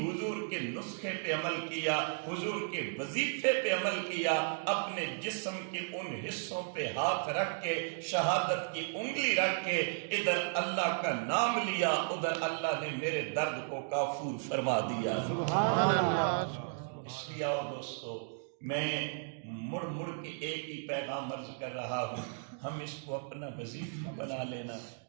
کے نسخے پہ عمل کیا، حضور کے وظیفے پہ عمل کیا، اپنے جسم کے ان حصوں پہ ہاتھ رکھ کے شہادت کی انگلی رکھ کے ادھر اللہ کا نام لیا، ادھر اللہ نے میرے درد کو کافور فرما دیا۔ سبحان اللہ۔ اس لیے آؤ دوستو، میں مڑ مڑ کے ایک ہی پیغام عرض کر رہا ہوں، ہم اس کو اپنا وظیفہ بنا لینا،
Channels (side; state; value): left; silent; digital silence